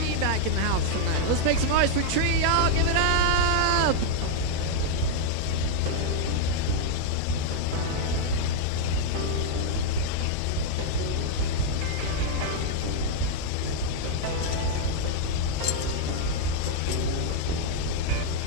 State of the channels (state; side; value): different; both; correlation 0.00